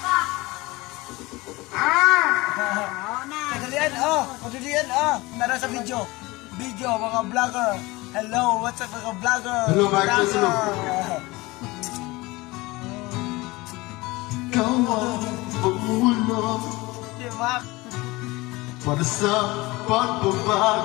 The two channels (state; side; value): quieter; right; 21.7 dB